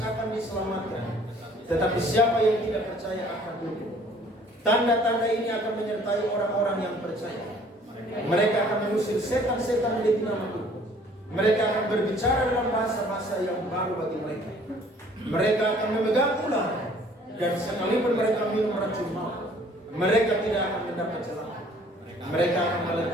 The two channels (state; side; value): normal; both; correlation 0.56